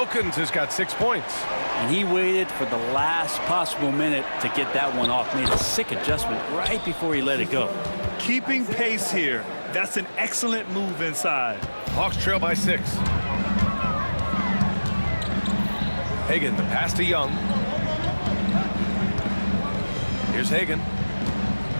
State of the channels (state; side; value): inverted; both; correlation -1.00